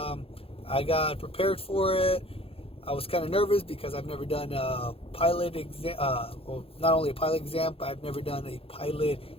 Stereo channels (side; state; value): right; late; 0.27 ms